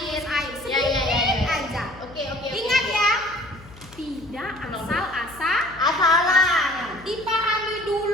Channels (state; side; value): noise; left; hum, 21 dB below the sound